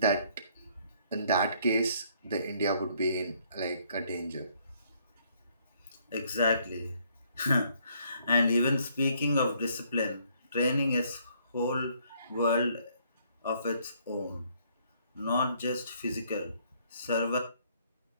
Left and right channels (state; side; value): inverted; both; correlation -0.66